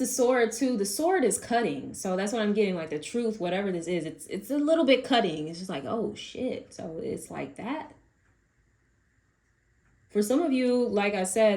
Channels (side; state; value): both; identical; correlation 1.00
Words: sword too. The sword is cutting. So that's what I'm getting. Like the truth, whatever this is, it's a little bit cutting. It's just like, oh shit. So it's like that. For some of you, like I